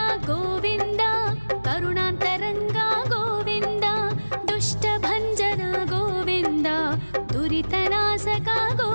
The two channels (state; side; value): inverted; both; correlation -1.00